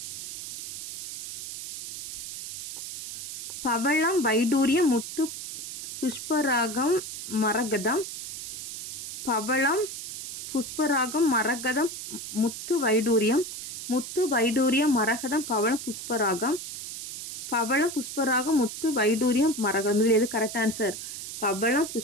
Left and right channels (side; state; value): right; noise; hiss, 9 dB below the sound